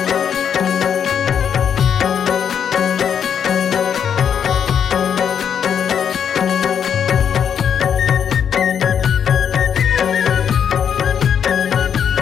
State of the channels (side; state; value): right; quieter; 8.0 dB